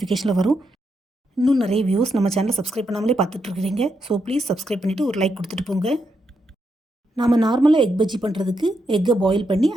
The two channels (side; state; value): both; normal; correlation 0.82